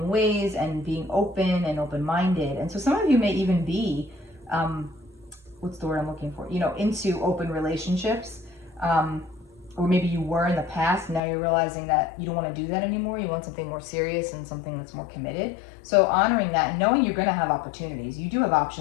ways and being open and open-minded. And so some of you may even be, what's the word I'm looking for? Into open relationships. Or maybe you were in the past, now you're realizing that you don't want to do that anymore. You want something more serious and something that's more committed. So honoring that and knowing you're going to have opportunities. You do have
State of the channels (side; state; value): right; drops out; at 11.2 s